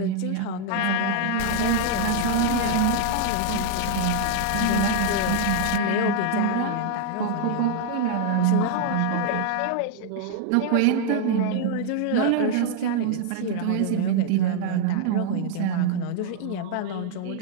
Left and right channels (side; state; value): both; different; correlation 0.00